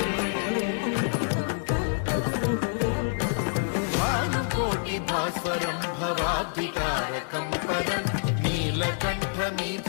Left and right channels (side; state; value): right; silent; digital silence